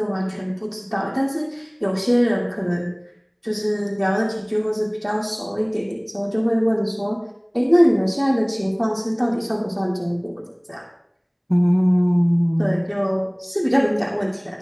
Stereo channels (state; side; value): identical; both; correlation 1.00